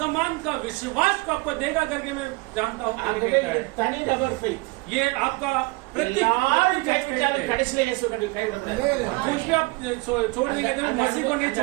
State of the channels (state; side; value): quieter; left; 25.2 dB